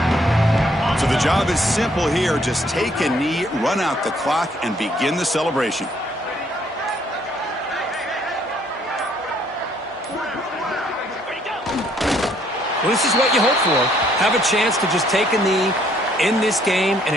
So the job is simple here. Just take a knee, run out the clock, and begin the celebration. Well, this is what you hope for. Have a chance to just take a knee in this game and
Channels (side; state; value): both; normal; correlation 0.66